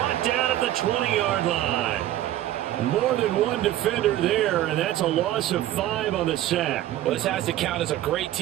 down at the 20-yard line. More than one defender there, and that's a loss of 5 on the sack. Well, this has to count as a great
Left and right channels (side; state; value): left; quieter; 13.5 dB